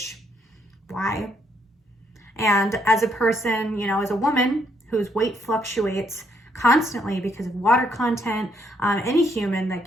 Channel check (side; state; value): both; normal; correlation 0.73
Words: why? And as a person, as a woman whose weight fluctuates constantly because of water content, any human,